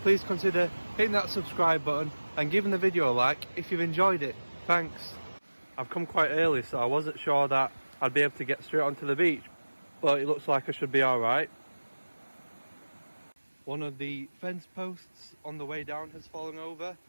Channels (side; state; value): both; inverted; correlation -1.00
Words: please consider hitting that subscribe button and giving the video a like if you've enjoyed it. Thanks. I've come quite early, so I wasn't sure that I'd be able to get straight onto the beach, but it looks like I should be alright. One of the fence posts on the way down has fallen over.